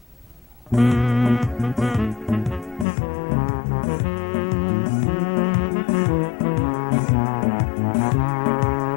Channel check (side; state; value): right; drops out; at 2.9 s